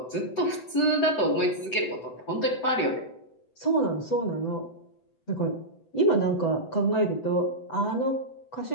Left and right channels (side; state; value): right; late; 8.0 ms